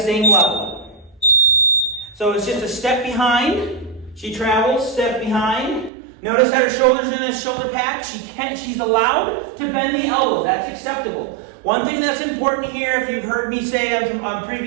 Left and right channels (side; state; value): left; drops out; at 5.9 s